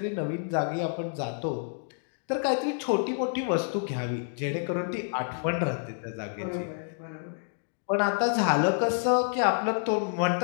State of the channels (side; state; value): right; silent; digital silence